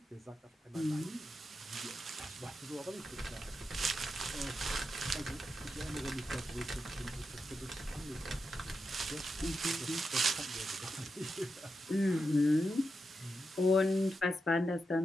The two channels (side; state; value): both; normal; correlation 0.87